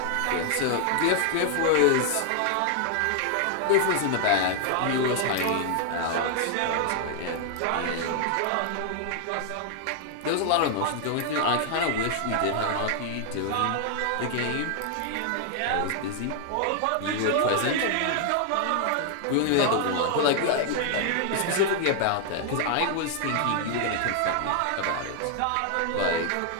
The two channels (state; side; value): different; both; correlation 0.00